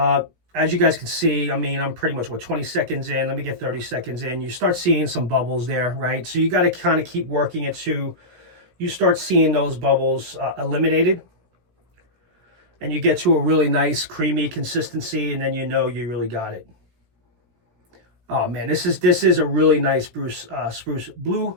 you guys can see, I mean, I'm pretty much, 20 seconds in. Let me get 30 seconds in. You start seeing some bubbles there, right? So you got to kind of keep working it to you start seeing those bubbles eliminated. and you get to a really nice creamy consistency, and then you know you really got it. Oh man, this is a really nice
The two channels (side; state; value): left; late; 17 ms